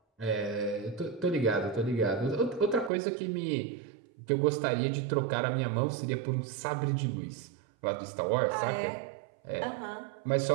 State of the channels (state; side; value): drops out; left; at 2.9 s